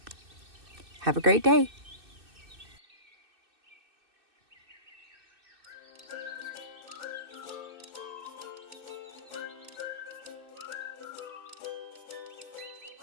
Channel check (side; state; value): left; late; 2.6 ms